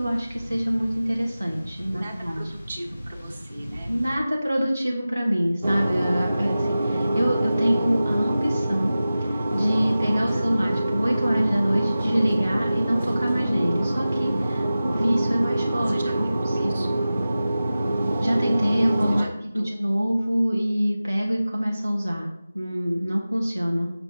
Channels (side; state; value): both; inverted; correlation -0.95